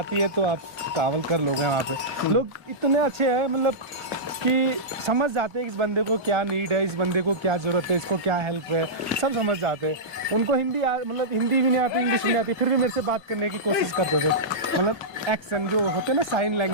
है तो आप ट्रैवल कर लोगे। वहाँ पे लोग इतने अच्छे हैं, मतलब कि समझ जाते हैं इस बंदे को क्या नीड है, इस बंदे को क्या ज़रूरत है, इसको क्या हेल्प है, सब समझ जाते हैं। उनको हिंदी मतलब हिंदी भी नहीं आती, इंग्लिश भी नहीं आती, फिर भी मेरे से बात करने की कोशिश करते थे। मतलब एक्शन जो होते हैं ना, साइन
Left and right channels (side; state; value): both; normal; correlation -0.14